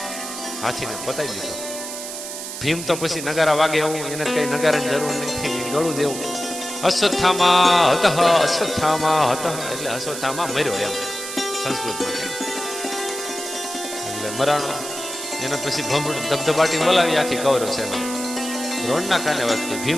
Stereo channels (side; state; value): right; noise; hiss, 8 dB below the sound